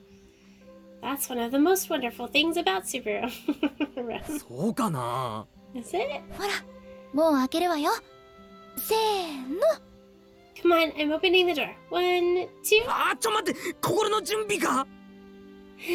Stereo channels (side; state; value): both; identical; correlation 1.00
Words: That's one of the most wonderful things about Subaru. そうかな。 Is it? ほら、もう開けるわよ。せーの。Come on, I'm opening the door. 1, 2. あー、ちょ待って、心の準備か。